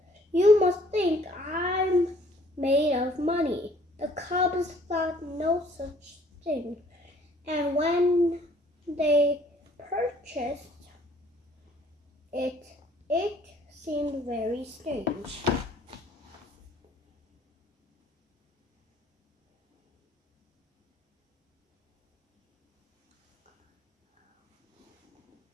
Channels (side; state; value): both; normal; correlation 0.59